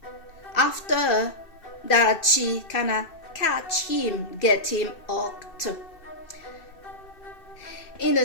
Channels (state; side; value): late; right; 2.6 ms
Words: after that, she kinda catch him, get him hooked in the